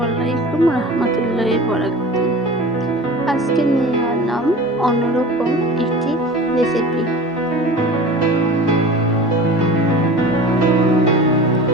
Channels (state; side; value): normal; both; correlation 0.37